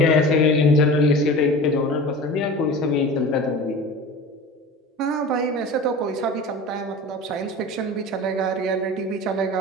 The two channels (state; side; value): normal; both; correlation 0.35